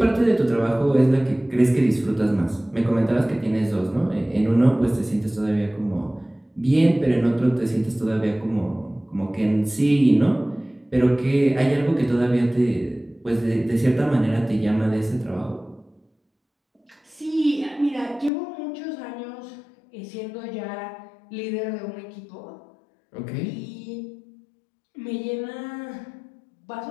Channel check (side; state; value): right; drops out; at 18.3 s